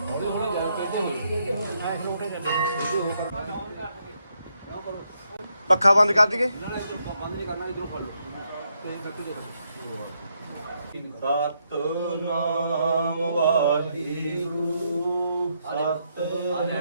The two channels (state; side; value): inverted; both; correlation -0.77